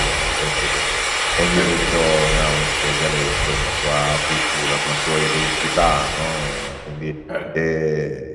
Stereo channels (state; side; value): identical; both; correlation 1.00